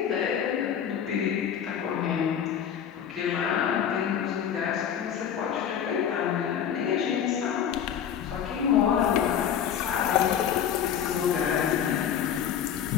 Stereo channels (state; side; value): quieter; right; 8.8 dB